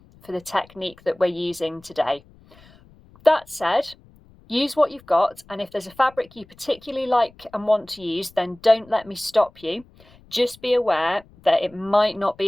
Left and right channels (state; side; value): noise; left; rumble, 26 dB below the sound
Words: for the technique that we're using today. That said, use what you've got, and if there's a fabric you particularly like and want to use, then don't let me stop you. Just be aware that it might not